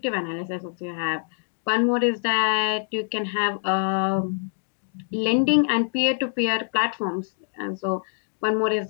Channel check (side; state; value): right; silent; digital silence